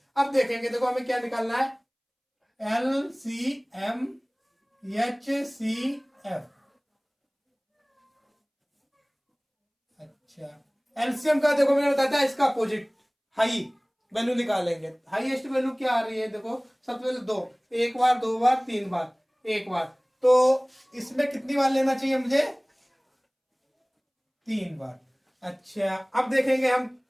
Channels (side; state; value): both; identical; correlation 1.00